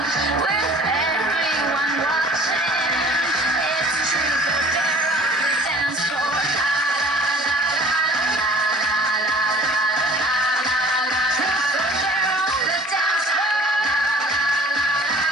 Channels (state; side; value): normal; both; correlation 0.50